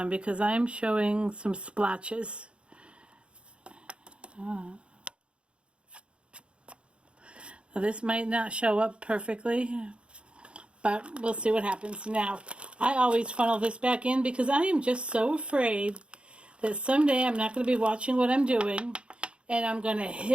because I'm showing some splotches. Now, this might not show up perfectly, but we'll see what happens. Now, I always funnel this back in because I am just so afraid that someday I'm not going to be watching what I'm doing and I'm going to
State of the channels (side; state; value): left; late; 0.058 ms